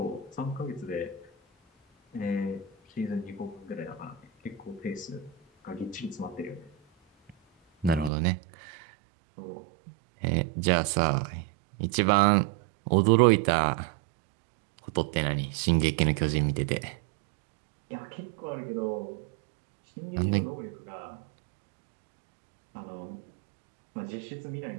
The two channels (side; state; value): left; drops out; at 8.1 s